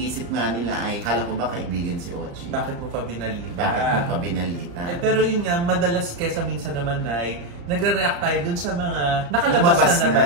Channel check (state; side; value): late; left; 35 ms